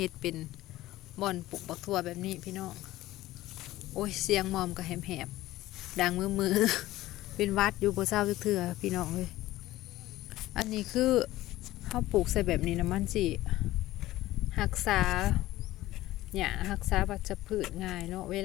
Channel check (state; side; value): quieter; right; 16.3 dB